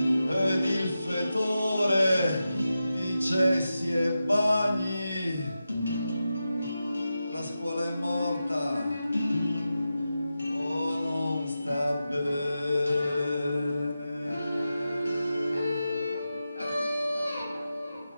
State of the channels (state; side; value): inverted; both; correlation -0.91